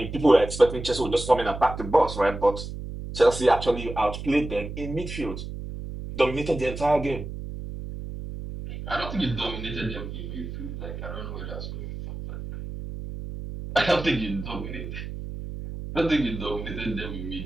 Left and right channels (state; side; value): noise; right; hum, 8 dB below the sound